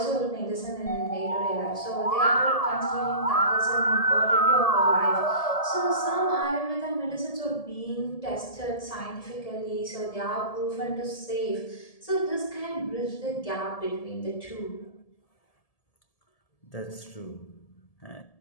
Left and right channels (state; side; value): late; right; 1.7 ms